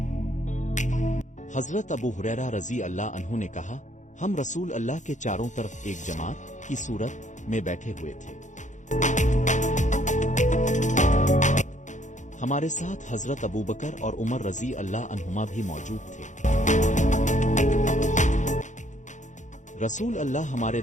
हजरत अबू हुरैरा रजी अल्लाह अन्हु ने कहा, हम रसूल अल्लाह के चारों तरफ एक जमात की सूरत में बैठे हुए थे। हमारे साथ हजरत अबू बकर और उमर रजी अल्लाह अन्हुमा भी मौजूद थे। रसूल अल्लाह हमारे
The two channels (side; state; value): right; late; 0.35 ms